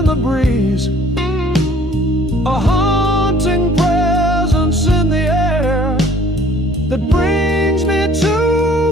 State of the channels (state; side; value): normal; both; correlation 0.55